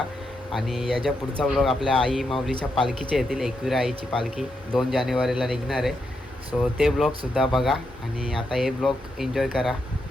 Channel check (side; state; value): both; normal; correlation 0.82